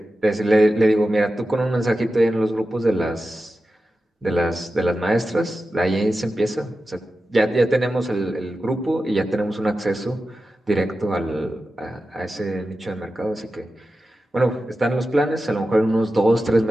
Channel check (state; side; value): normal; both; correlation 0.93